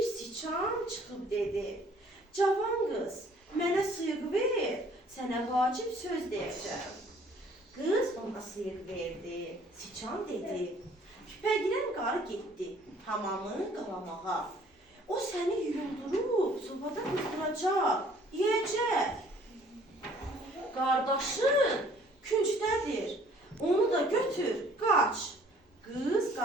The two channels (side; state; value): both; normal; correlation 0.57